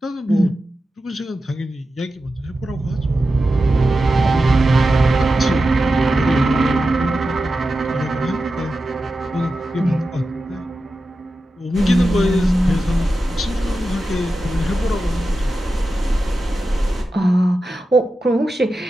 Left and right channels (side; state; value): both; normal; correlation 0.91